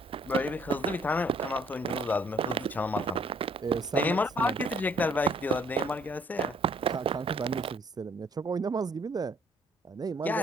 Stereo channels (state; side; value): normal; both; correlation 0.62